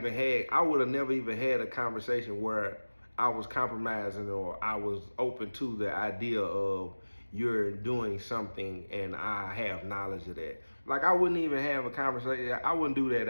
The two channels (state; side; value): inverted; both; correlation -1.00